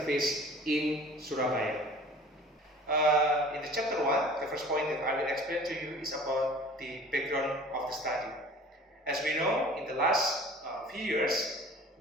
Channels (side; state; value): both; normal; correlation 0.46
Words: in Surabaya. In the chapter 1, the first point that I will explain to you is about the background of the study. As we know, in the last few years,